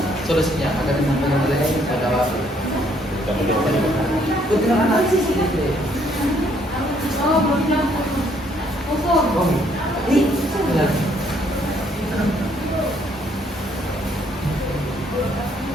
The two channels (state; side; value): normal; both; correlation 0.67